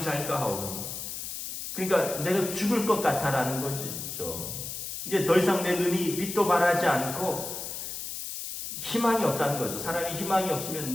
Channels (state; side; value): noise; left; hiss, 7 dB below the sound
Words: 하오니. 그러니까 내가 죽을 것 같아라는 거죠. 이제 더 이상 내 눈이 빛도 발하지 않고 희망이 없다는 거죠. 사람이 희망이